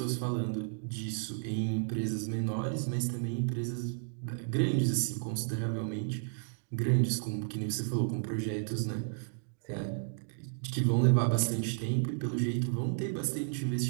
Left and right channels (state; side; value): silent; left; digital silence